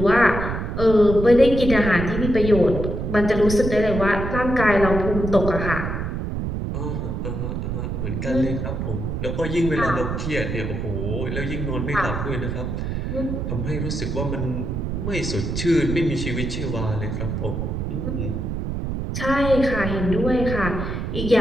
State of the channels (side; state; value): right; noise; rumble, 3 dB below the sound